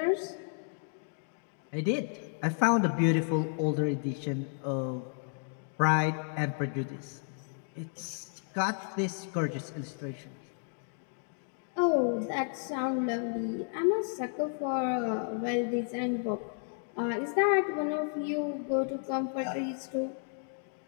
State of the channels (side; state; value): right; silent; 56 dB below the other